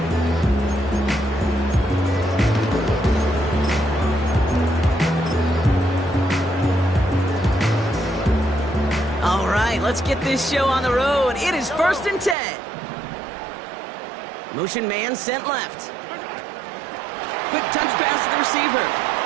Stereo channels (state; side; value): drops out; left; at 12.4 s